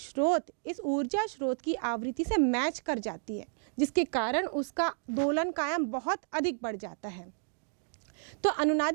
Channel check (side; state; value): left; silent; digital silence